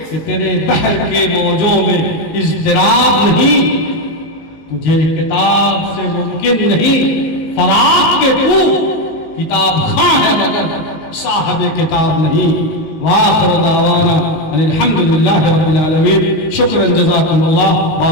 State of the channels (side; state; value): right; late; 19 ms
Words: کہ تیرے بحر کے موجوں میں اضطراب نہیں، تجھے کتاب سے ممکن نہیں فراق کے تو کتاب خواہ ہے مگر صاحب کتاب نہیں۔ وآخر دعوانا الحمدللہ رب العالمین۔ شکرا جزاکم اللہ،